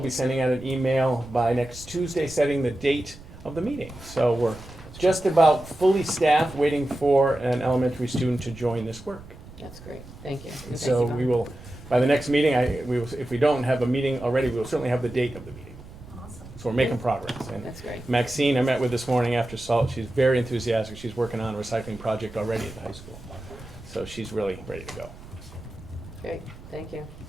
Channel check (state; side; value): noise; right; rumble, 17 dB below the sound